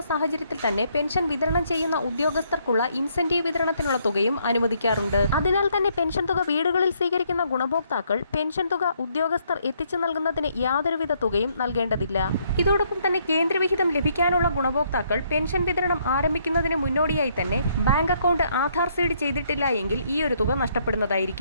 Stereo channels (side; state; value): both; inverted; correlation -0.70